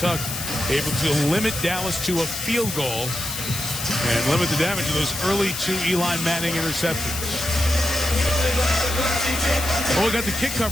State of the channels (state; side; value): noise; left; hiss, 6 dB below the sound